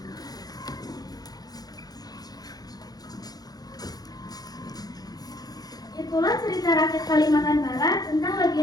Itulah cerita rakyat Kalimantan Barat tentang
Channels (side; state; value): right; late; 0.19 ms